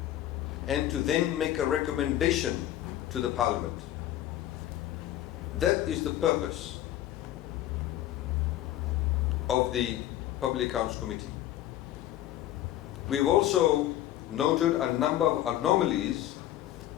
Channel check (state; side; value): quieter; right; 13.3 dB